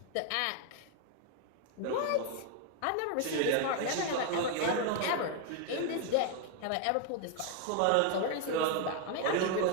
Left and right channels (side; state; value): both; different; correlation 0.01